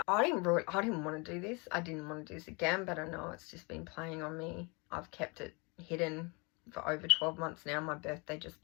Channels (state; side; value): quieter; right; 30.2 dB